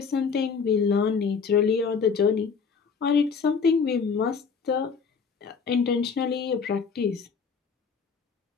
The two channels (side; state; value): right; quieter; 5.7 dB